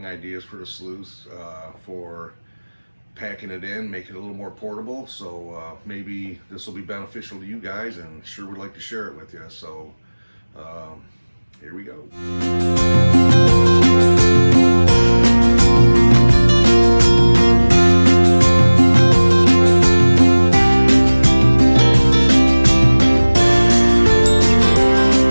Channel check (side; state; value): both; inverted; correlation -1.00